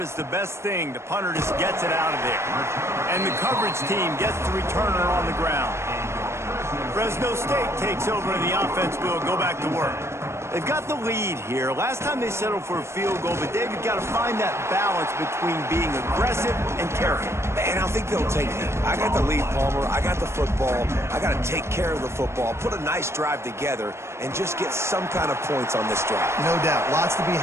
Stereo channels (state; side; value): late; left; 0.13 ms